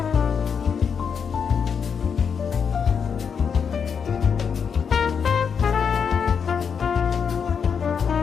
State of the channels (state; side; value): quieter; right; 6.7 dB